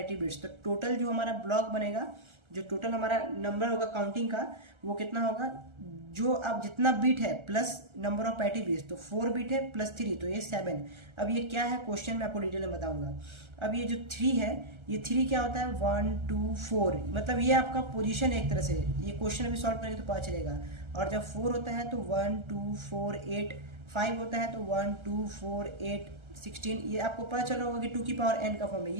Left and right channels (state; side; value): late; left; 1.3 ms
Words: बिट्स। तो टोटल जो हमारा ब्लॉक बनेगा, जो टोटल हमारा नंबर होगा काउंटिंग का, वो कितना होगा, जो अब जितना बीट है plus number of parity bits, तो 4 बीट है प्लस 3, तो ये 7। अब ये क्या है क्वेश्चन में आपको डिटेल में बताऊंगा। अब ये जो 3 है, ये 3 क्या होता है, 1 2 4, मतलब ये आपका पोजीशन है एक तरह से। ये क्वेश्चन अभी सॉल्व करेंगे तो पता चलेगा। और जब 4 होता है तो 1 2 4 8, 5 होता है तो 1 2 4 8 16। ये आपको पता चल रहा होगा कि 2 की पावर n का फॉर्म है।